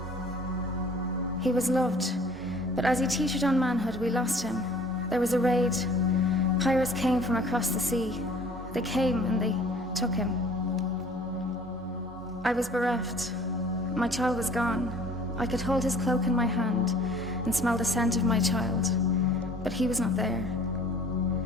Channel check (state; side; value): normal; both; correlation 0.51